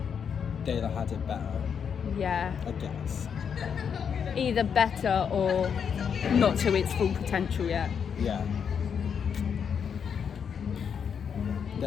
They'd have had it better. Yeah. I guess. Either better or not to its full potential yet. Yeah.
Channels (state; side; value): quieter; right; 7.2 dB